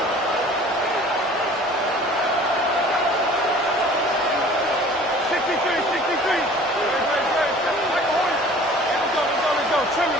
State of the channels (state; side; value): normal; both; correlation 0.48